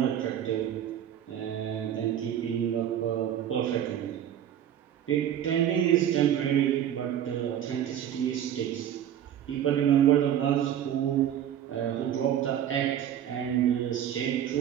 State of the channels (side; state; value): left; quieter; 10.4 dB